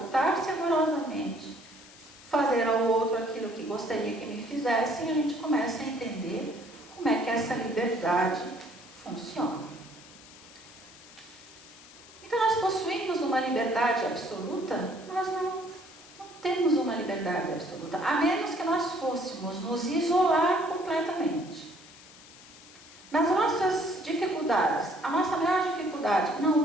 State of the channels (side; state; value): left; noise; hiss, 21 dB below the sound